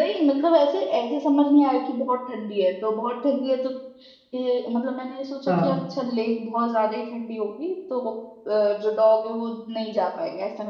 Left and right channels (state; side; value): identical; both; correlation 1.00